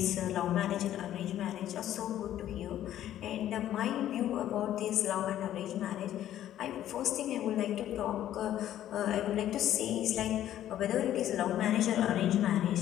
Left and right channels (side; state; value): right; quieter; 12.1 dB